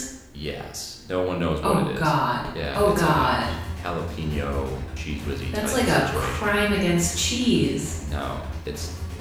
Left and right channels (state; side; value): identical; both; correlation 1.00